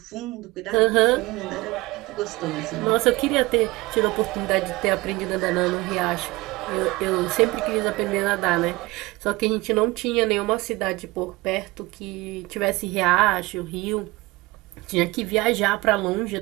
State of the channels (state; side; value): quieter; left; 21.6 dB